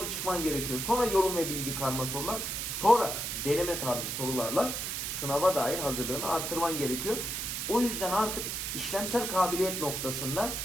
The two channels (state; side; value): noise; right; hiss, 3 dB below the sound